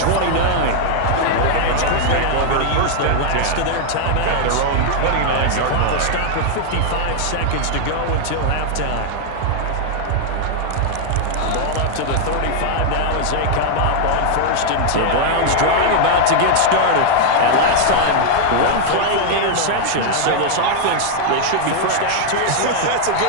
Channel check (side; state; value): both; different; correlation 0.00